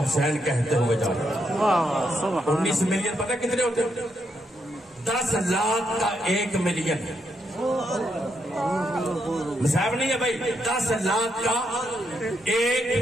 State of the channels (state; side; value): normal; both; correlation 0.80